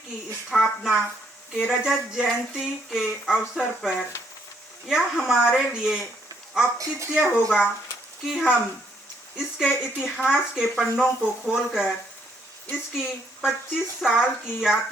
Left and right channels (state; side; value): normal; both; correlation 0.70